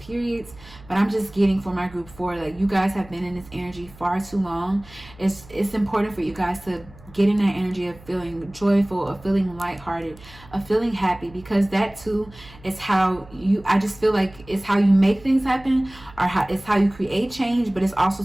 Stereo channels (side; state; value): right; noise; hum, 22 dB below the sound